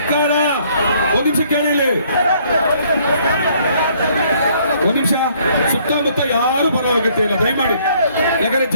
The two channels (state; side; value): inverted; both; correlation -0.63